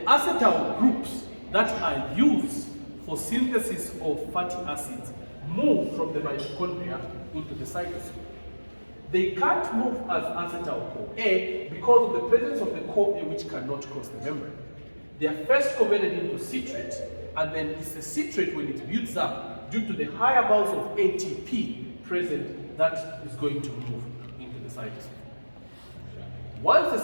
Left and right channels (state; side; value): inverted; both; correlation -1.00